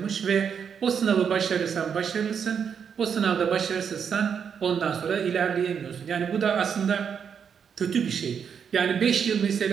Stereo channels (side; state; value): left; quieter; 7.2 dB